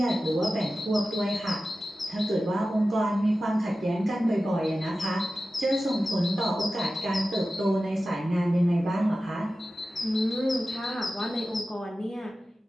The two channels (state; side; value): normal; both; correlation 0.94